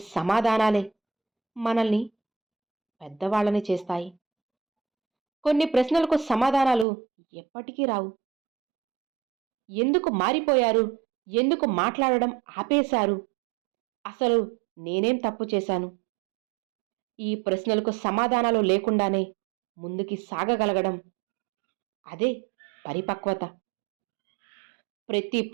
సమాధానాలే మనల్ని పెద్దవాళ్ళని చేస్తాయి. కొన్ని ప్రశ్నలకు సమాధానాలు ఎప్పటికీ రావు. ఎందుకు మారిపోయారు, ఎందుకు మాట్లాడడం ఆపేశారు, అసలు నేనేం తప్పు చేశాను, ఈ ప్రశ్నలకు సమాధానాలు లేకుండానే ముందుకి సాగగలగడం, అదే పరిపక్వత. ప్రతి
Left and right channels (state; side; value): drops out; left; at 6.9 s